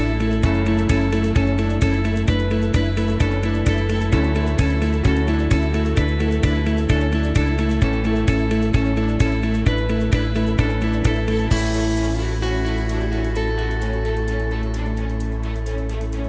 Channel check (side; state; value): both; identical; correlation 1.00